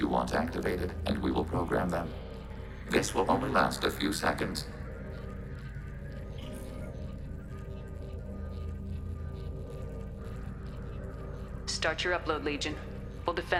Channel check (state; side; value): identical; both; correlation 1.00